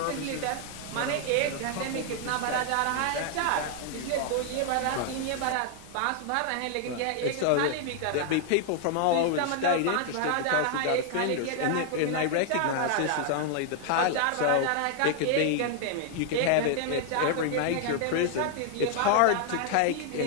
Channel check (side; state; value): both; different; correlation 0.00